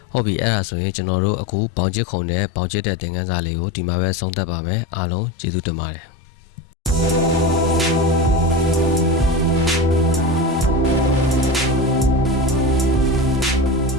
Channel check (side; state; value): both; normal; correlation 0.24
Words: ဟုတ်ပြီအဲ့ဒါဆိုရင်ကျွန်တော်တို့အခုဘောင်ချစ်ခုံနဲ့ဘောင်ချစ်တဲ့သင်ခန်းစာလေးကိုဒီမှာပဲဆုံးသက်ပါမယ်အားလုံးကျေးဇူးတင်ပါတယ်